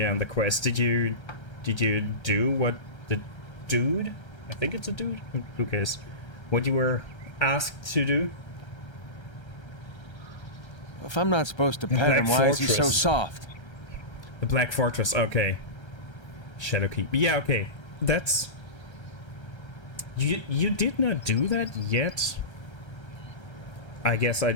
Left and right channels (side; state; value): right; late; 1.3 ms